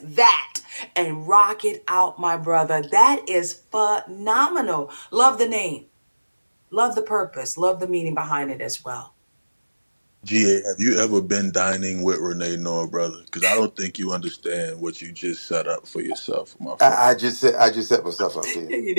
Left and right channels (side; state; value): both; inverted; correlation -1.00